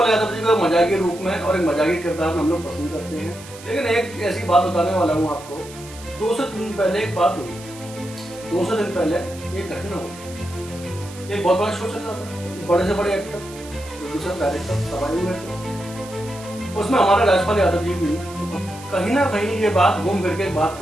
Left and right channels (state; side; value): noise; right; hiss, 17 dB below the sound